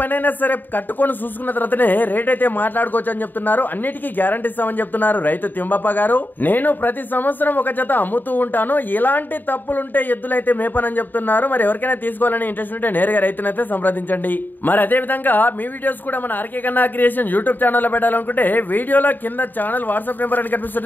సరే కట్టుకొని చూసుకున్న తర్వాతనే రేట్ అయితే మాట్లాడుకోవచ్చు అని చెప్తున్నారు. అన్నిటికీ గ్యారంటీ ఇస్తామని చెప్తున్నారు రైతు తిమ్మప్ప గారు. నేను ప్రతి సంవత్సరం ఒక జత అమ్ముతూ ఉంటాను, ఎలాంటి తప్పులుంటే ఎద్దులైతే మేపనని చెప్తున్నారు. మరి ఎవరికైనా తీసుకోవాలని ఇంట్రెస్ట్ ఉంటే నేరుగా రైతునైతే సంప్రదించండి. మరి అదే విధంగా మీ వీడియోస్ కూడా మన ఆర్కే కన్నా క్రియేషన్ యూట్యూబ్ ఛానల్ లో పెట్టాలనుకుంటే వీడియోలో కింద ఛానల్ వాట్సాప్ నెంబర్ అని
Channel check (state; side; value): late; right; 0.090 ms